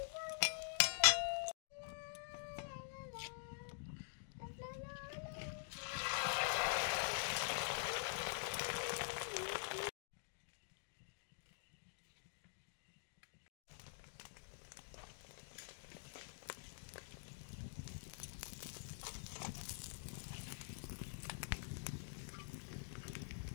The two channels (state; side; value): silent; right; digital silence